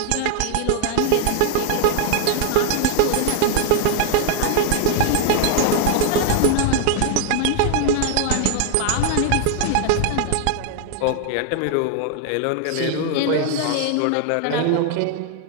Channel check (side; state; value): both; different; correlation 0.00